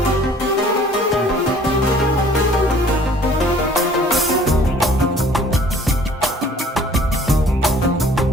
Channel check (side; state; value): both; normal; correlation 0.54